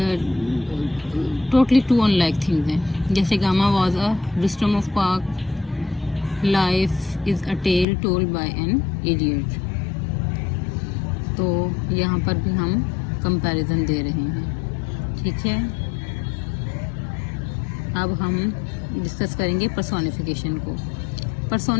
टोटली 2 अनलाइक थिंग्स हैं। जैसे Gama was a Rustam of park, life is a tale told by an idiot. तो यहाँ पर भी हम कंपैरिजन दे रहे हैं। ठीक है। अब हम डिस्कस करेंगे पर्सोनिफिकेशन को।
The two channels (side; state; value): right; drops out; at 7.9 s